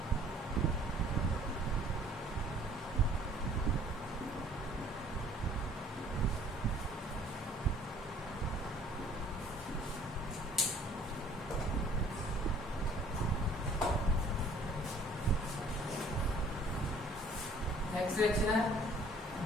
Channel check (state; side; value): normal; both; correlation 0.55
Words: नेक्स्ट रिएक्शन है